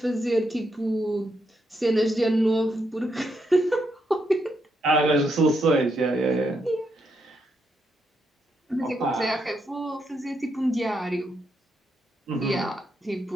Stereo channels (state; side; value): normal; both; correlation 0.80